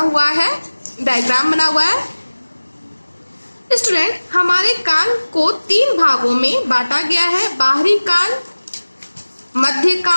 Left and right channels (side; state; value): both; inverted; correlation -1.00